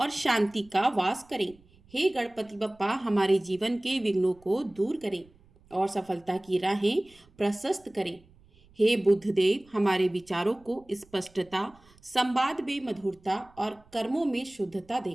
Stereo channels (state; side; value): noise; right; rumble, 29 dB below the sound